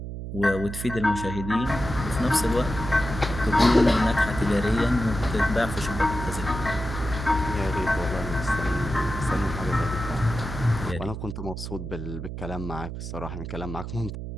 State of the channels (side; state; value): right; noise; hum, 7 dB below the sound